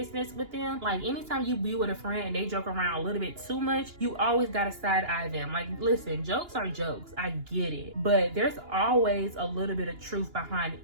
with them. Like anytime you be with a friend and they joke around a little bit too much, you always gotta side-eye them. Like, listen, jokes are jokes. I get it. But there's always a little bit of truth behind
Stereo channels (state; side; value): late; left; 2.9 ms